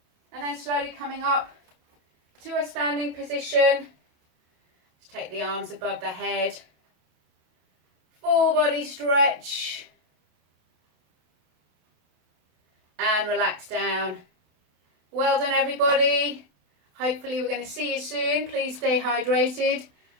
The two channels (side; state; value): left; late; 27 ms